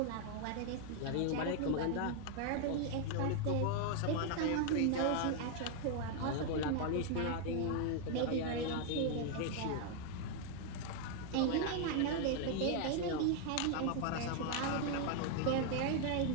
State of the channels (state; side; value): different; both; correlation 0.00